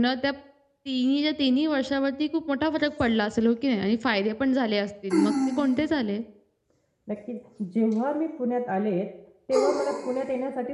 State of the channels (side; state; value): both; identical; correlation 1.00